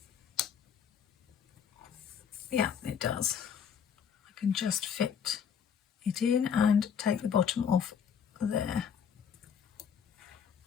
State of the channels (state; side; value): quieter; right; 7.6 dB